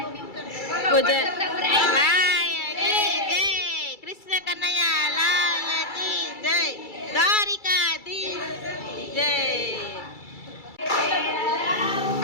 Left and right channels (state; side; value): late; right; 2.3 ms